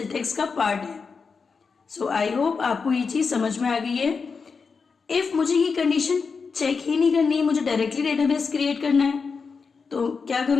का पार्ट है। सो आई होप आपको ये चीज समझ में आ गई है। इफ मुझे ये कंडीशन चेक ही नहीं करनी है, मुझे डायरेक्टली डेटाबेस क्रिएट करना है, तो क्या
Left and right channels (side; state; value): right; quieter; 5.1 dB